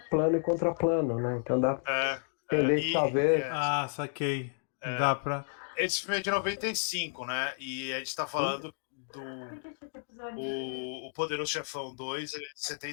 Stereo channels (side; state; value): right; silent; 57 dB below the other